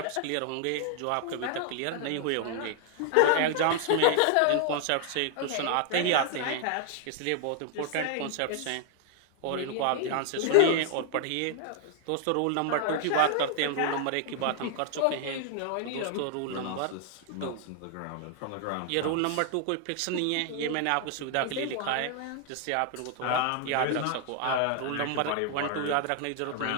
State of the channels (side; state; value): both; different; correlation 0.00